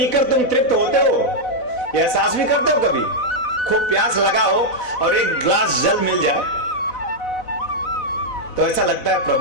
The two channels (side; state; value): right; late; 4.0 ms